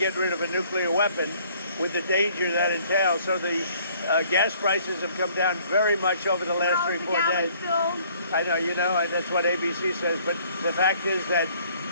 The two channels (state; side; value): inverted; both; correlation -0.59